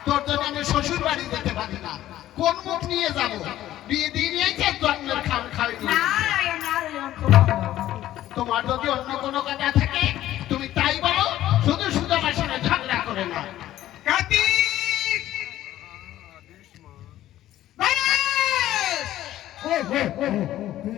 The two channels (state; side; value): quieter; right; 13.6 dB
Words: তোর জন্য আমি শ্বশুর বাড়ি যেতে পারি না, কোন মুখ নিয়ে যাবো? বিয়ে দিয়ে নিয়েছে জন্মের খাওয়া খাওয়াই নিয়ে। নারায়ণ নারায়ণ, খুব ভালো। তোমার যদি অন্য কোনো কথা থাকে তুমি তাই বলো, শুধু শুধু আমার সঙ্গে ঝগড়া করে না। কার্তিক!